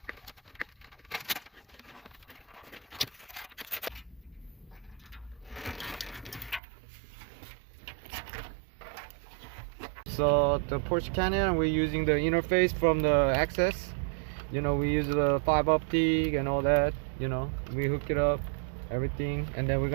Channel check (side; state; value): left; drops out; at 6.6 s